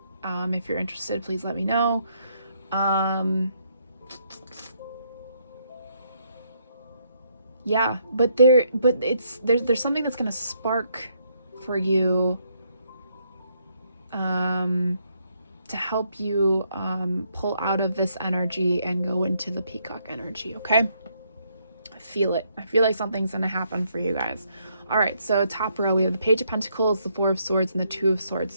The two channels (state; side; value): inverted; both; correlation -0.73